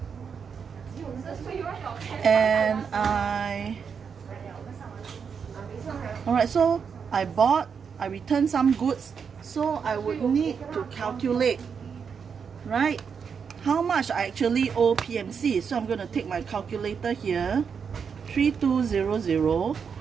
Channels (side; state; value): left; quieter; 6.4 dB